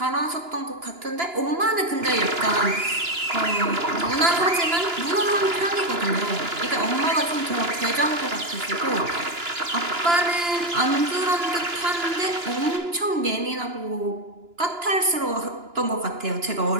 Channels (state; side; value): late; left; 2.9 ms